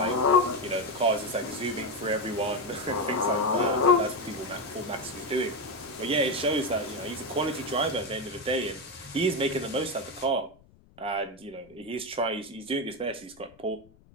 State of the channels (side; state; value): left; noise; rumble, 28 dB below the sound